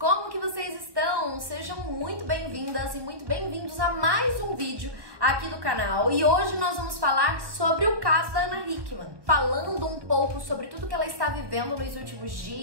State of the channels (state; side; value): late; left; 1.4 ms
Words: que vocês estão? Sejam muito bem-vindas e muito bem-vindos a mais um vídeo aqui do canal. E hoje nós vamos falar sobre o caso da Ana Hickman, falando um pouco sobre tudo que ela está vivendo nos últimos